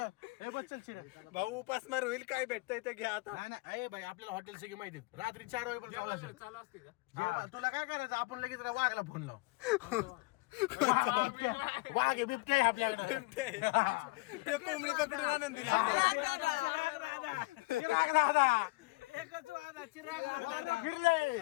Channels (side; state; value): right; quieter; 24.5 dB